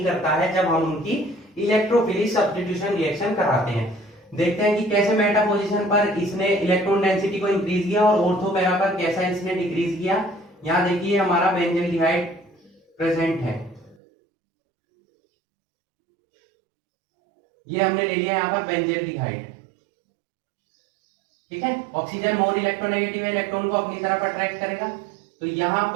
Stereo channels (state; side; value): drops out; left; at 14.0 s